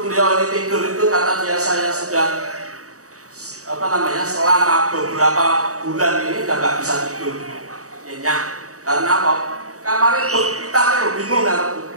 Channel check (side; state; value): left; late; 0.66 ms